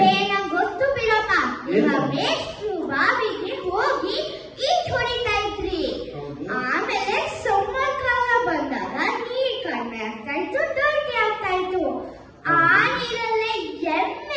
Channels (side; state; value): both; identical; correlation 1.00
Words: ಗೊತ್ತು ಬಿಡಪ್ಪ, ಏನು? ನಿಮ್ಮ ಮೇಷ್ಟ್ರು ಬಾವಿಗೆ ಹೋಗಿ ಈಜ್ ಹೊಡಿತಾ ಇದ್ರಿ. ಹೌದು. ಆಮೇಲೆ ಸಮ್ಮರ್ ಕಾಲ ಬಂದಾಗ ನೀರ್ ಕಡಿಮೆ ಆಗ್ತಾ ಇತ್ತು, ಡರ್ಟಿ ಆಗ್ತಾ ಇತ್ತು. ಆ ನೀರಲ್ಲೇ